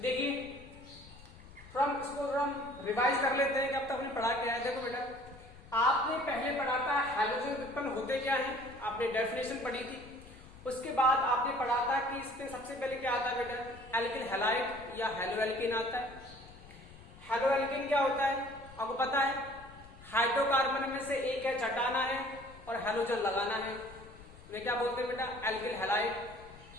इसको हम रिवाइज कर लेते हैं कि अब तक हमने पढ़ा क्या है। देखो बेटा, आपने पहले पढ़ा था हैलोजन व्युत्पन्न होते क्या हैं, आपने डेफिनेशन पढ़ी थी। उसके बाद आपने पढ़ा था कि इसमें सबसे पहले क्या आता है बेटा, एल्किल हैलाइड या हेलोएल्किन आता है। हेलोएल्किन क्या होता है आपको पता है, हाइड्रोकार्बन में से एक है हटाना है और हेलोजन लगाना है, वे क्या बोलते हैं बेटा, एल्किल हैलाइड।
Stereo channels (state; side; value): noise; left; rumble, 20 dB below the sound